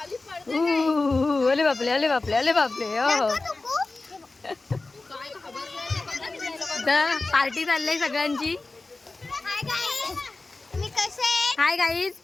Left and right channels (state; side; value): quieter; right; 3.4 dB